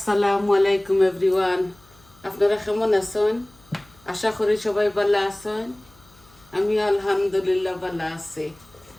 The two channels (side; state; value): left; noise; hum, 28 dB below the sound